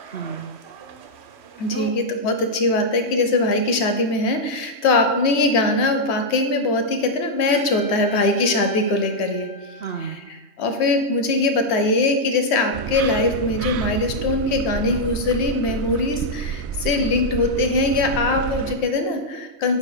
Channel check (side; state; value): right; late; 3.2 ms